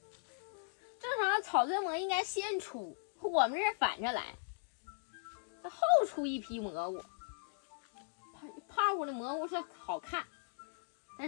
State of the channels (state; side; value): silent; right; digital silence